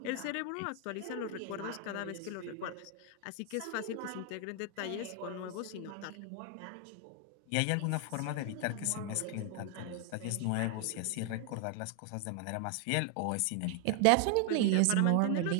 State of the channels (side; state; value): both; different; correlation 0.00